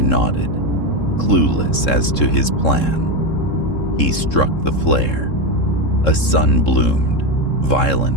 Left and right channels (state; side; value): late; right; 3.7 ms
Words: nodded, clueless as to his plan. He struck the flare. A sun bloomed,